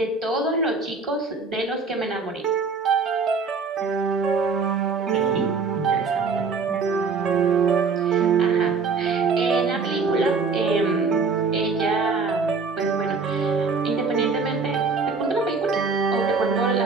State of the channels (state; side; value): quieter; left; 4.6 dB